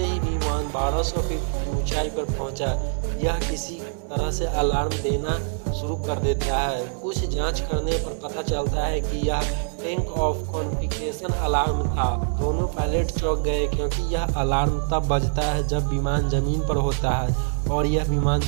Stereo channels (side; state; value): left; silent; 62 dB below the other